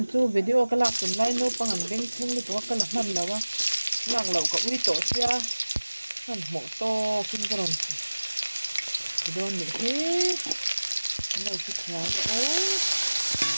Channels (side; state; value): both; inverted; correlation -1.00